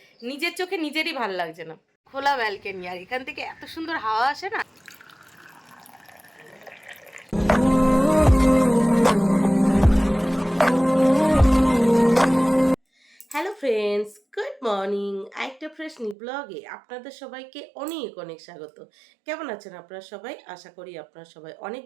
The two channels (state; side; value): drops out; left; at 16.2 s